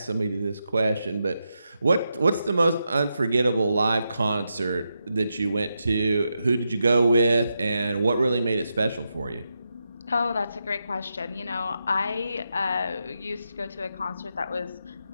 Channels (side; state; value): both; inverted; correlation -0.86